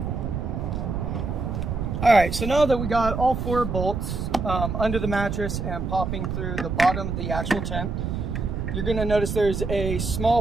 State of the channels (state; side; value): noise; right; rumble, 3 dB below the sound